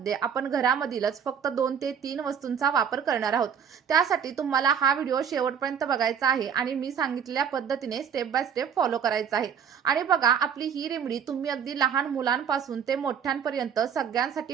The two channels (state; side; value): quieter; left; 7.7 dB